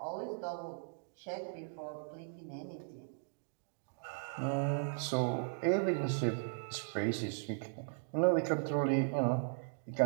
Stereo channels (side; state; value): left; silent; digital silence